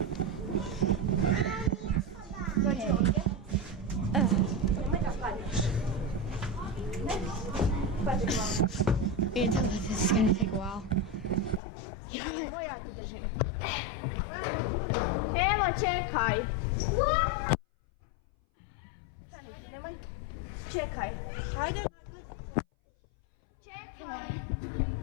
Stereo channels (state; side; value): drops out; right; at 11.6 s